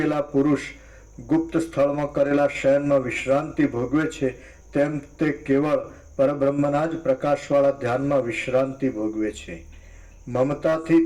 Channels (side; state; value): both; identical; correlation 1.00